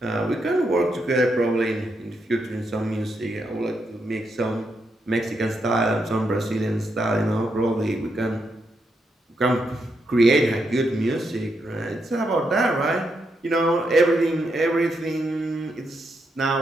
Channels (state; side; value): normal; both; correlation 0.81